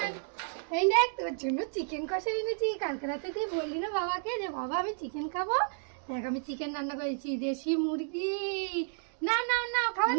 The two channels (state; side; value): silent; left; digital silence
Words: নেই। এই দেখ তোর জন্য চিকেন কষা এনেছি। কালকে রাতে তুই বললি না বাবাকে যে বাবা আমি চিকেন খাবো? দেখ আমি চিকেন রান্না করেছি, দেশি মুরগি। না না না, খাওয়া